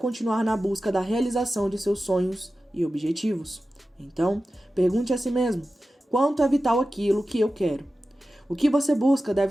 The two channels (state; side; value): normal; both; correlation 0.94